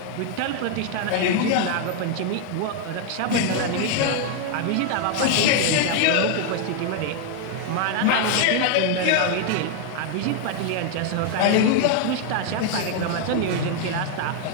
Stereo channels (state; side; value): different; both; correlation 0.01